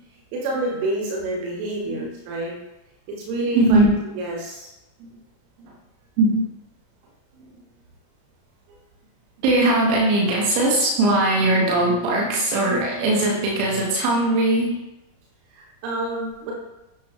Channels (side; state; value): left; late; 34 ms